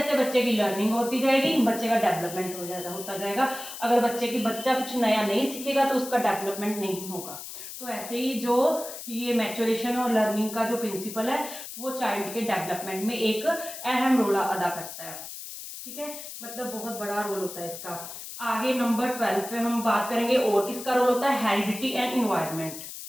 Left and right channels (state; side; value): noise; left; hiss, 10 dB below the sound